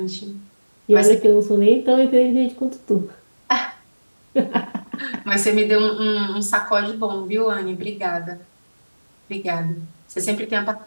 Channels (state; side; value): inverted; both; correlation -1.00